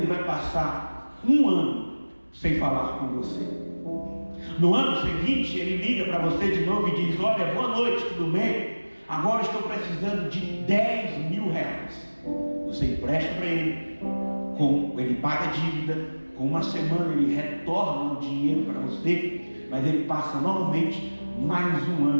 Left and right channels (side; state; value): both; inverted; correlation -1.00